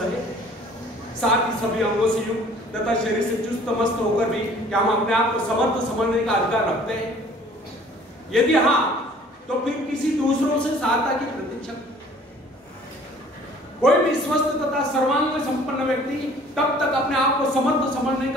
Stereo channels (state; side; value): normal; both; correlation 0.53